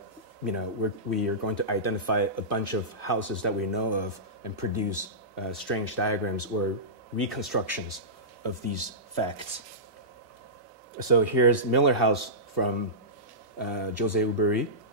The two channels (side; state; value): both; normal; correlation -0.17